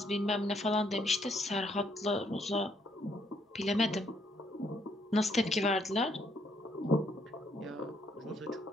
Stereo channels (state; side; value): normal; both; correlation 0.71